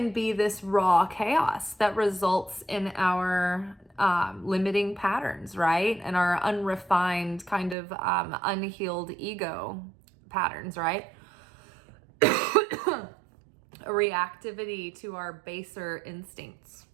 be this raw chaos that results in our limiting patterns, right? And our unrefined kind of unhealed ego patterns, right? A reactivity to our baser instincts.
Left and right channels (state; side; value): drops out; left; at 7.8 s